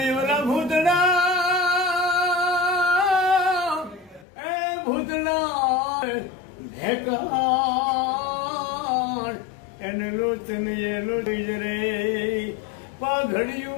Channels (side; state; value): right; drops out; at 4.2 s